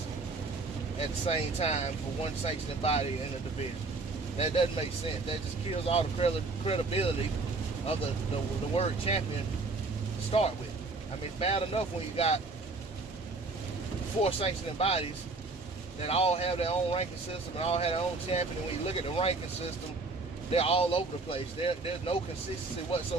at the same time for one sanctioning body in a division. That doesn't make sense. That just kills all the credibility of the word champion to start with. I mean, it's bad enough when you got 4 sanctioning bodies that all have their own ranking system and all have their own champion. And when you look at the ranking system, they're all over the place. There's no consistency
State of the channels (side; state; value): left; quieter; 3.7 dB